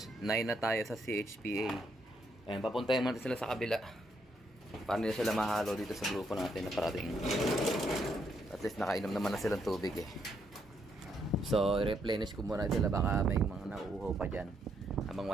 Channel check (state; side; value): normal; both; correlation 0.75